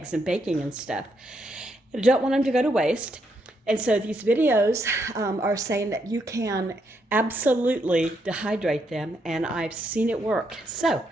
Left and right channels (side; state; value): both; normal; correlation 0.77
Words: and baking and stuff. I don't want them to go to waste. And so these videos are saying that you can absolutely dehydrate them, and I've seen it work. So